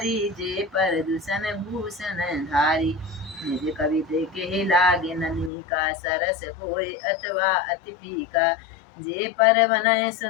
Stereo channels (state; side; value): drops out; right; at 5.5 s